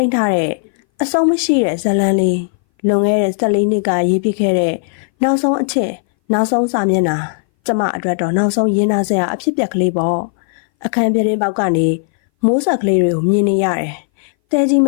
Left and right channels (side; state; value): right; silent; 61 dB below the other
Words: တ်ထားတဲ့အဆုံးမရှိတဲ့ဇာတ်လမ်းလေးလွန်ခဲ့တဲ့14နှစ်ကရေးပြခဲ့တဲ့နောက်ဆုံးအချက်နောက်ဆုံးစာမျက်နှာကျမအတွက်တော့နောက်ဆုံးရင်းနှီးစရာအဖြစ်ပြက်ကလေးပေါ့အခန်းပြတင်းပေါက်ကနေမိုးဆက်ကလေးတွေကိုမြင်နေရတယ်တဲကြီးမ